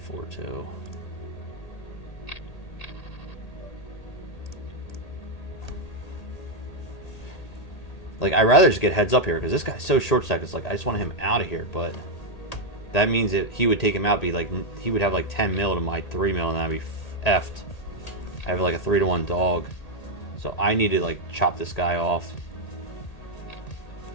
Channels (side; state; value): right; late; 1.8 ms